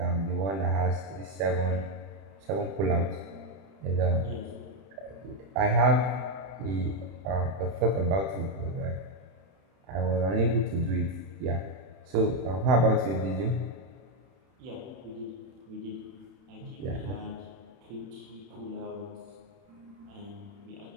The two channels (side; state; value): left; late; 31 ms